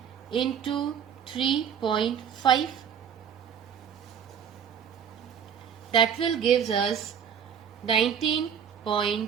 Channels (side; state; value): left; quieter; 8.0 dB